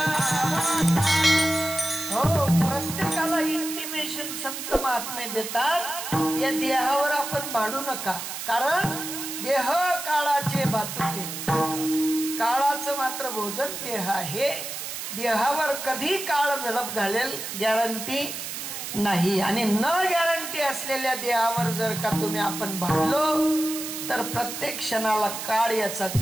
संत महात्मे देतात, या देहावर आपण भांडू नका, कारण देह काळाचे भातुके, काळाचं मात्र भोजन देह आहे। देहावर कधी काळ झडप घालेल गॅरंटी नाही, आणि न गॅरंटी असलेल्या देहावर जर का तुम्ही आपण भांडलो तर प्रत्येक क्षणाला काळ याचा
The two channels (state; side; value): noise; right; hiss, 7 dB below the sound